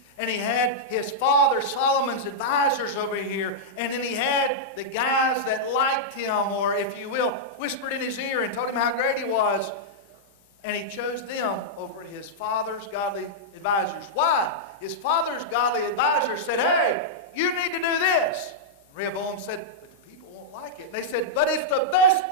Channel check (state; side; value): normal; both; correlation -0.07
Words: And he had his father Solomon's advisors over here. And then he had the guys that liked him, or if you will, whispered in his ear and told him how great he was. And he chose them over his father's godly advisors. Why? His father's godly advisors said, hey, you need to do this. And Rehoboam said, but the people won't like it. And they said, but it's the best